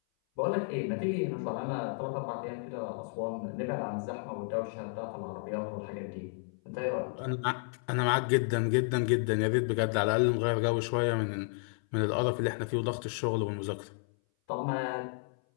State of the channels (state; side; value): silent; right; 56 dB below the other